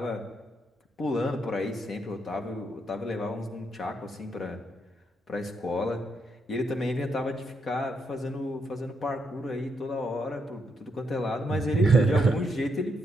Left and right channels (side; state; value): both; normal; correlation 0.78